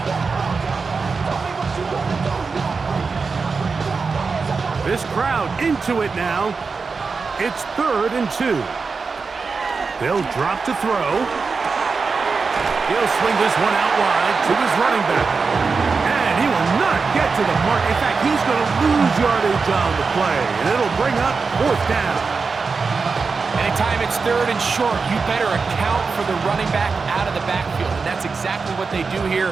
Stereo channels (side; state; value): left; quieter; 4.7 dB